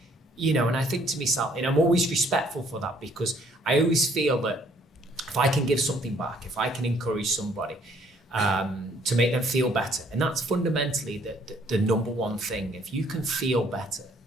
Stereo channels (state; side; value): normal; both; correlation 0.63